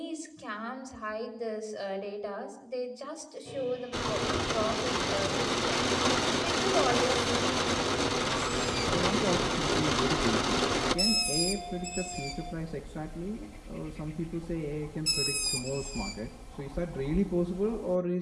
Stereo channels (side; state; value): both; identical; correlation 1.00